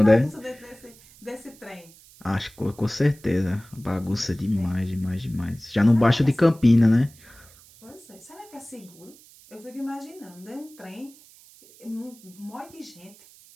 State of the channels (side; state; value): right; noise; hiss, 24 dB below the sound